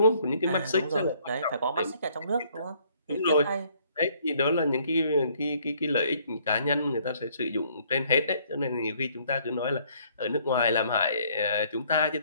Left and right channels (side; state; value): both; inverted; correlation -0.63